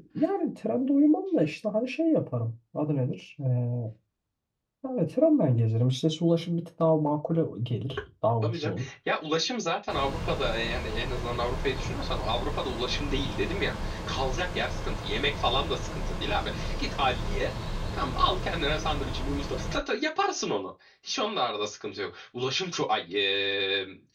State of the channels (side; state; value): both; identical; correlation 1.00